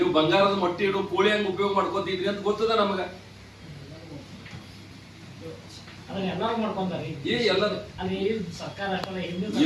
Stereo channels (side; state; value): both; identical; correlation 1.00